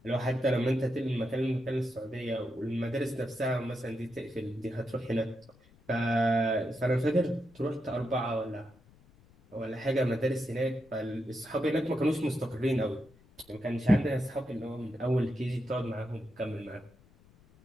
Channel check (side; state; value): left; noise; rumble, 27 dB below the sound